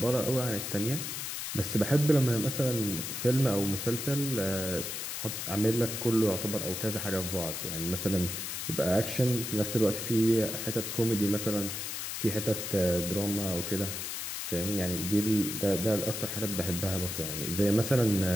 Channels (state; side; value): noise; left; hiss, 4 dB below the sound